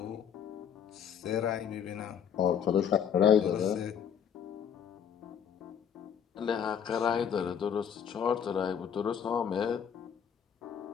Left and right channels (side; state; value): right; quieter; 8.1 dB